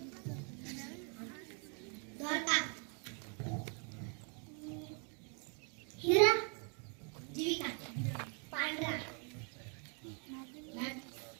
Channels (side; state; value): left; quieter; 38.3 dB